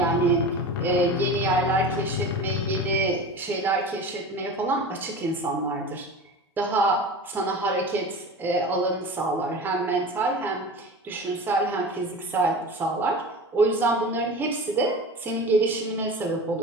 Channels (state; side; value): normal; both; correlation 0.32